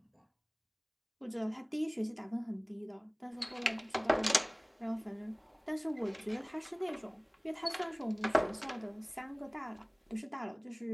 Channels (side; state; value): both; identical; correlation 1.00